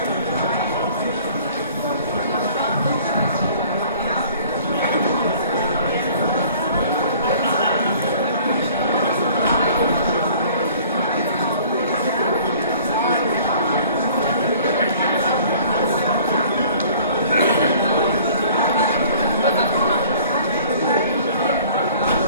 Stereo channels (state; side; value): inverted; both; correlation -0.52